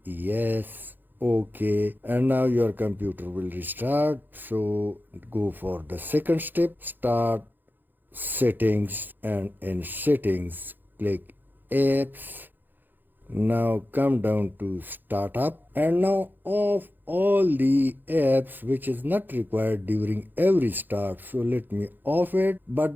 yes, OK, and now your computer will restart. So go for the second step, start settings, and in settings click apps. Now come down to startup and now off all the apps which is not required during every start. So let me off it,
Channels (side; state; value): left; late; 0.090 ms